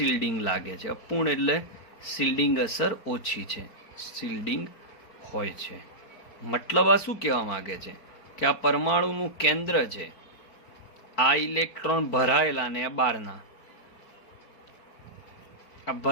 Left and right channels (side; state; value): right; late; 4.5 ms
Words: લાગે છે. અપૂર્ણ એટલે શિલ્ડિંગ અસર ઓછી છે, શિલ્ડિંગ હોય છે. મતલબ આ શું કહેવા માંગે છે કે આ પરમાણુનું કેન્દ્ર છે, આ ઇલેક્ટ્રોન ભરાયેલા ને આ બહારના, આ